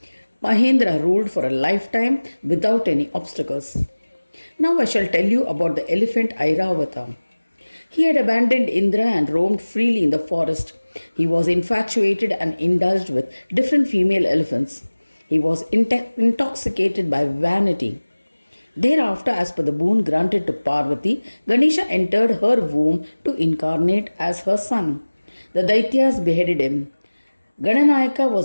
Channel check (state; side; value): inverted; both; correlation -1.00